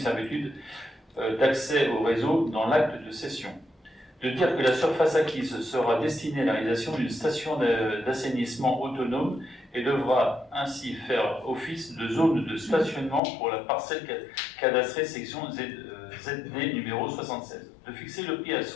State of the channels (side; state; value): right; drops out; at 13.2 s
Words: d'accès au réseau dans l'acte de cession. De dire que la surface acquise sera destinée à la réalisation d'une station d'assainissement autonome et devra ainsi faire office de zone de stationnement pour la parcelle cadastrée section ZD numéro 76. De fixer le prix à